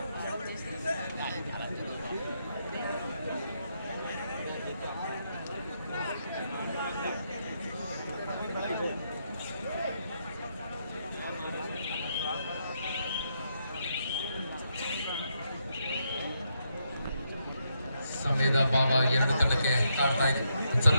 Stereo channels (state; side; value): inverted; both; correlation -0.79